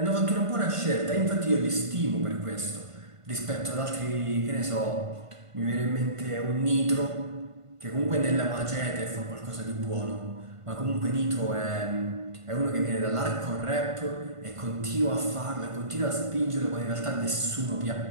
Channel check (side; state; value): left; late; 1.5 ms